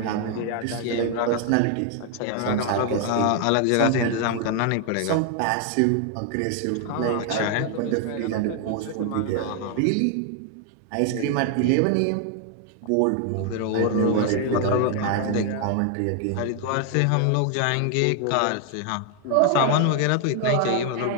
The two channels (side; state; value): both; different; correlation 0.00